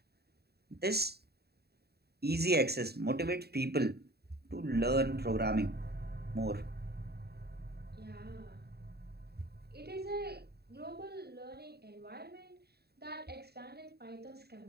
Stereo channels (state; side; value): late; left; 0.47 ms